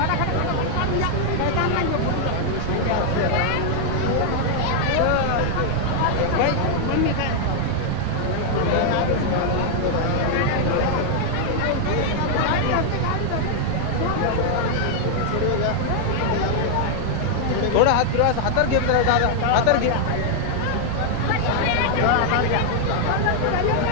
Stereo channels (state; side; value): different; both; correlation 0.00